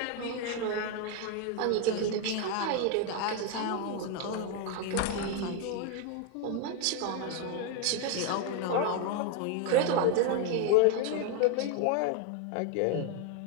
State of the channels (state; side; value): different; both; correlation 0.01